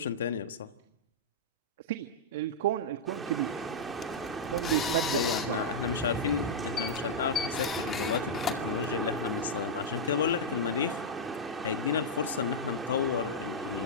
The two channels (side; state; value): both; normal; correlation -0.06